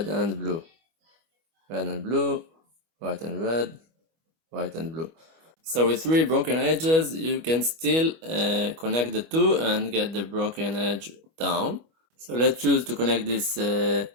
and blue, red and blue, white and red, white and blue. So with three broken edges you can still connect the two and get the broken edge down. So let's choose to connect this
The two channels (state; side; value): late; left; 25 ms